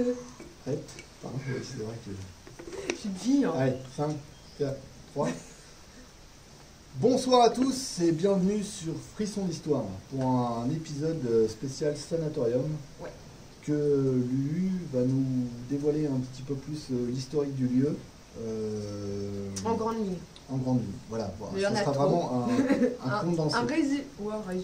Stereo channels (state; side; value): identical; both; correlation 1.00